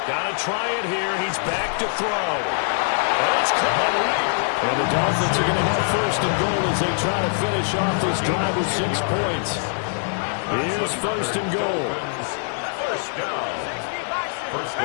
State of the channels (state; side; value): silent; right; digital silence